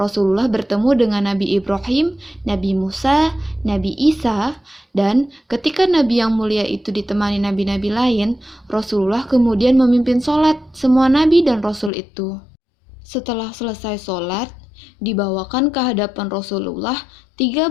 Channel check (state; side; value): drops out; right; at 11.9 s